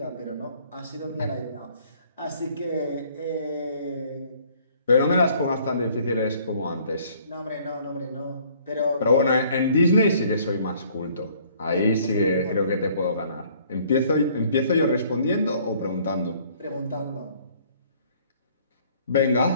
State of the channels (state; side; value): inverted; both; correlation -0.59